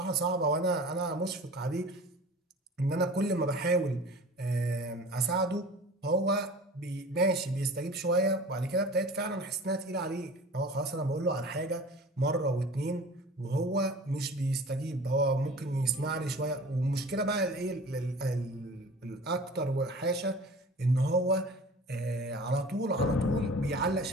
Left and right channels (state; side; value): normal; both; correlation 0.41